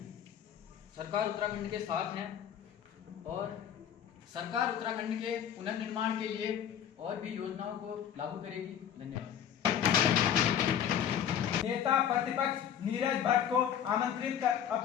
सरकार उत्तराखंड के साथ है और सरकार उत्तराखंड के पुनर्निर्माण के लिए और भी योजनाओं को लागू करेगी। धन्यवाद। नेता प्रतिपक्ष नीरज भट्ट को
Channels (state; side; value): quieter; right; 9.4 dB